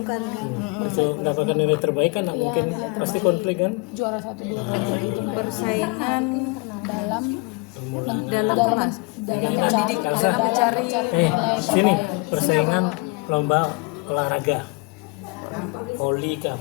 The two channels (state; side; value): quieter; right; 27.8 dB